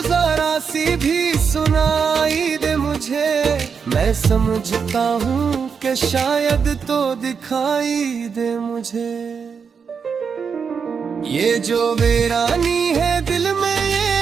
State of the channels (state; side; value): quieter; left; 6.2 dB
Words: जरा सी भी सुनाई दे मुझे, मैं समझता हूँ कि शायद तो दिखाई दे मुझे। ये जो वीरानी है दिल में